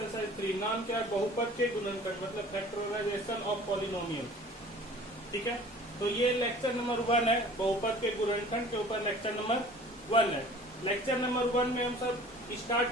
3 नाम क्या है? बहुपद के गुणनखंड, मतलब फैक्टराइजेशन ऑफ पॉलिनोमियल। ठीक है, तो ये लेक्चर नंबर 1 है। बहुपद के गुणनखंड के ऊपर लेक्चर नंबर 1 है। लेक्चर नंबर 1 में हम सब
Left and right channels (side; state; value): both; normal; correlation 0.47